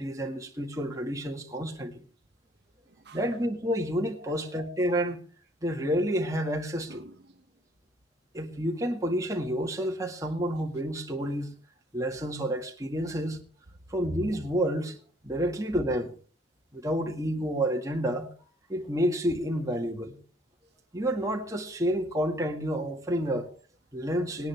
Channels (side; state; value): both; normal; correlation 0.62